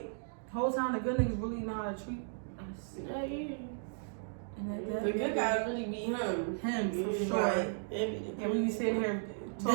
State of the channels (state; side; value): silent; left; digital silence